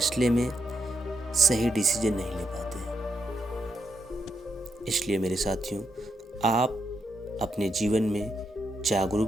में सही डिसीजन नहीं ले पाते हैं। इसलिए मेरे साथियों, आप अपने जीवन में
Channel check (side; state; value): both; normal; correlation 0.82